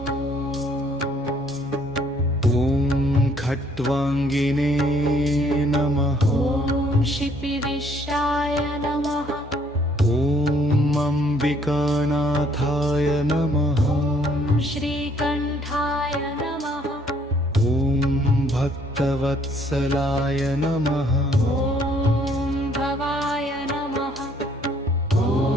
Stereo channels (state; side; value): normal; both; correlation 0.64